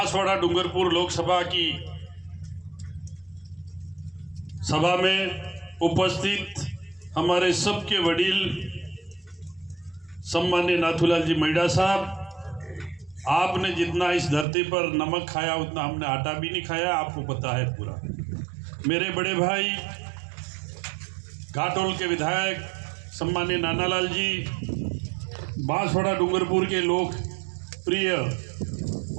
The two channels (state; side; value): drops out; left; at 14.5 s